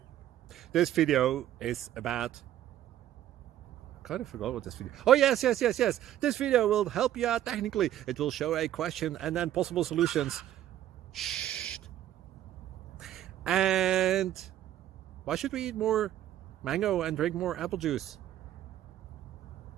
is about, I kind of forgot what this video. Oh, yes. This video will help you out technically. It will show a question and then possible solutions. Shh. And why should we eat more mango and drink more apple juice?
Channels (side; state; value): left; quieter; 12.3 dB